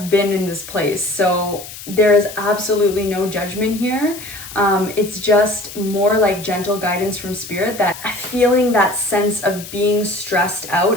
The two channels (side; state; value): left; noise; hiss, 13 dB below the sound